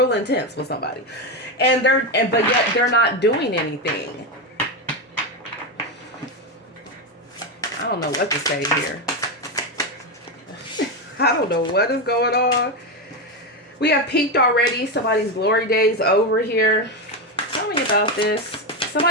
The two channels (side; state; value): both; normal; correlation 0.11